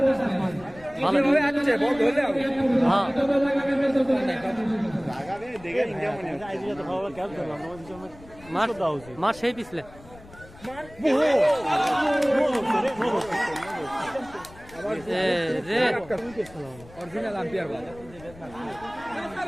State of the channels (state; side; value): noise; left; rumble, 21 dB below the sound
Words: ভালো আছে বল ধরলে হ্যাঁ লাগাবে দেখে ইন্ডিয়া মনে হচ্ছে আইজি তো ভালো ক্যাচ করলাম মার সেই পিছলে অরিজিনাল আম্পায়ার বল